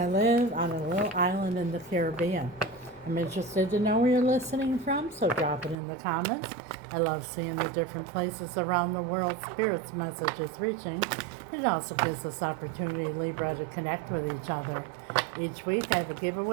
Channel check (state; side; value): drops out; left; at 5.8 s